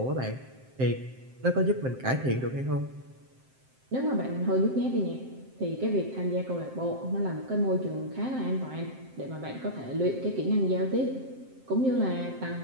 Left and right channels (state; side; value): late; left; 7.7 ms